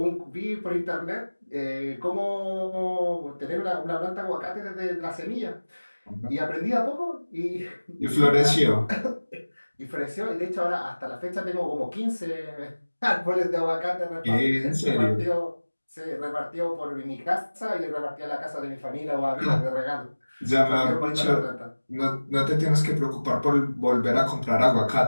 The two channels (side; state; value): both; inverted; correlation -1.00